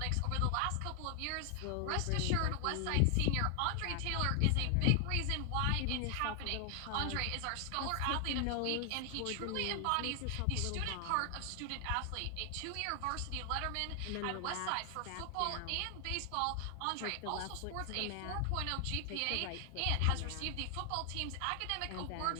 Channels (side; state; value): both; different; correlation 0.00